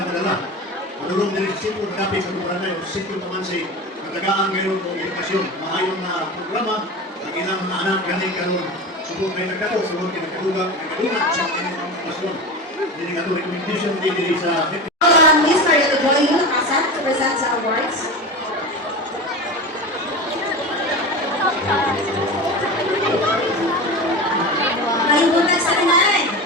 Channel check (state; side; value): normal; both; correlation 0.27